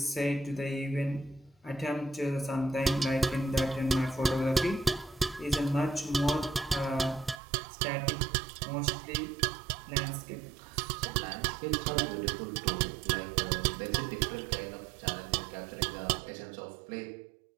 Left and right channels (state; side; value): drops out; left; at 7.4 s